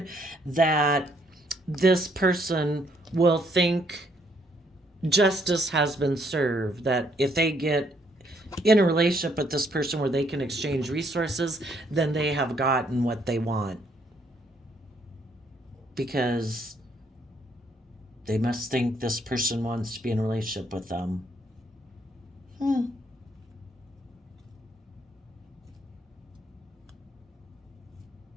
that this person will think justice has been served, that if they get in a relationship with this person where they can exchange resources, then they have gotten what they want, because they must think this person wants to be in a relationship with them.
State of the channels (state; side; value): normal; both; correlation 0.69